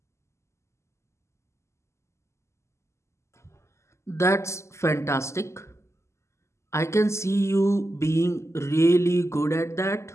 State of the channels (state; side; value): late; right; 0.13 ms